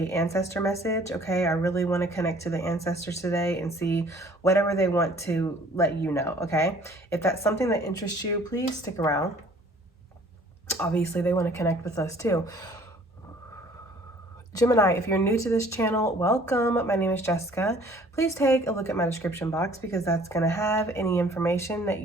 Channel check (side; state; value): both; normal; correlation 0.54